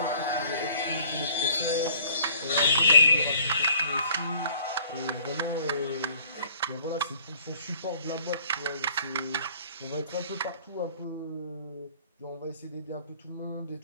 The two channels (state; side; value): inverted; both; correlation -0.54